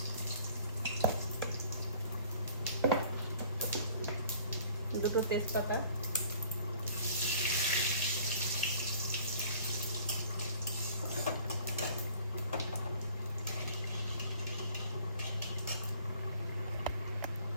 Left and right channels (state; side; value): inverted; both; correlation -0.53